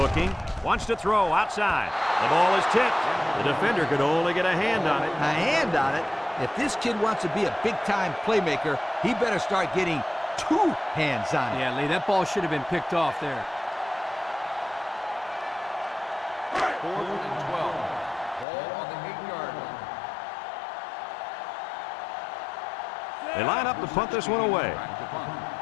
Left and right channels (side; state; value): right; drops out; at 18.4 s